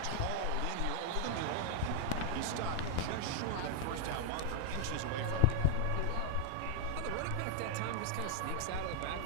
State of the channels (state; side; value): different; both; correlation 0.00